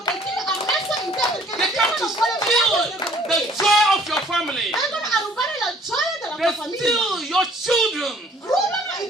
che Dio ha messo in te perché They il come Dio to non vuole steal vedere the le joy of your family. Vengono a rubare la gioia della They tua famiglia. steal your children Rubano i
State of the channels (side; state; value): both; normal; correlation 0.57